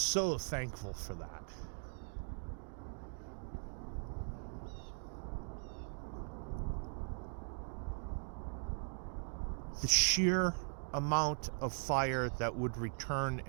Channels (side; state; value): left; silent; 51 dB below the other